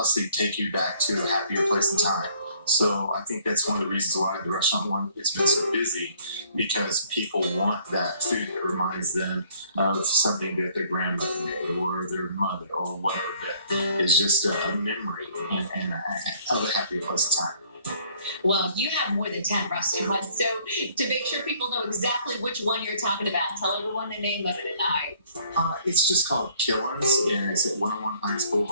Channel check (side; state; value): both; inverted; correlation -0.61